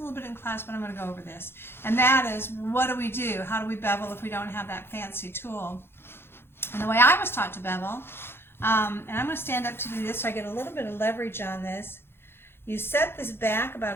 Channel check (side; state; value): right; late; 0.11 ms